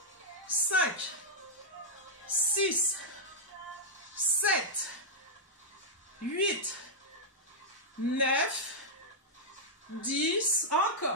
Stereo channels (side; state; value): both; normal; correlation -0.07